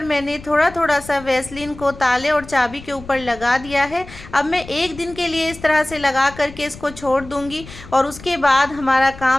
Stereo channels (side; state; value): left; noise; rumble, 17 dB below the sound